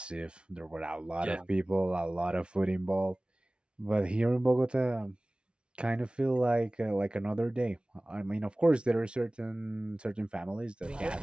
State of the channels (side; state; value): left; late; 0.057 ms